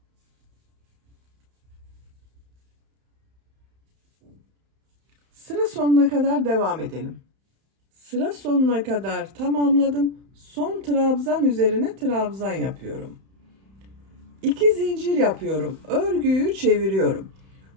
Sıra sonuna kadar devam edelim. Sıra sonuna kadar tamamladım. Son trabzan üzerine trabzan yapıyorum. 2 zincir yapıyorum. Örgüyü çeviriyorum.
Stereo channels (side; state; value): left; late; 31 ms